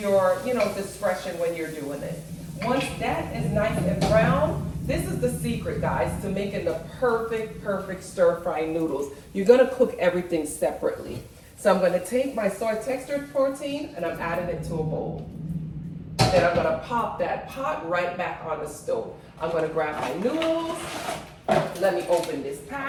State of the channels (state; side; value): identical; both; correlation 1.00